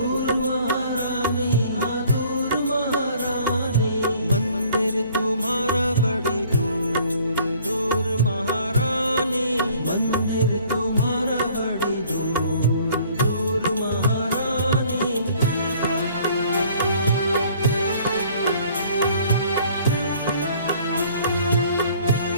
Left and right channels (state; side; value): inverted; both; correlation -0.55